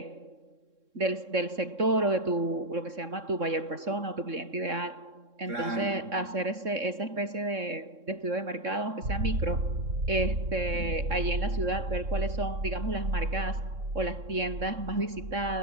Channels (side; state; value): left; late; 3.6 ms